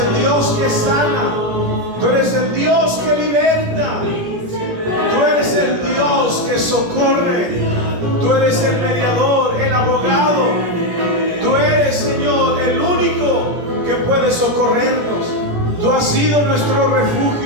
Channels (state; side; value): late; left; 17 ms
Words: Dios que sana, tú eres el Dios que liberta, tú eres el Dios que socorre, tú eres el mediador, el abogado, tú eres, Señor, el único que puede socorrernos. Tú has sido nuestro